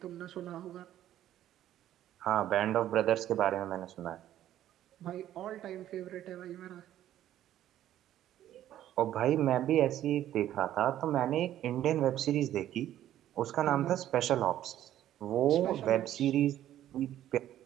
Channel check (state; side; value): quieter; left; 12.3 dB